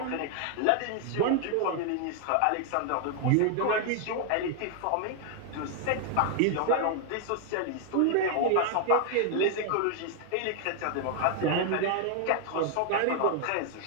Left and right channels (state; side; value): different; both; correlation 0.00